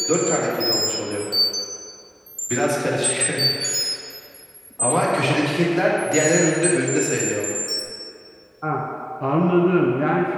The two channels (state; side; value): identical; both; correlation 1.00